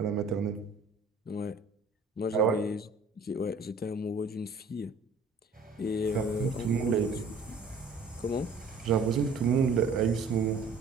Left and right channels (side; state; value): left; quieter; 3.9 dB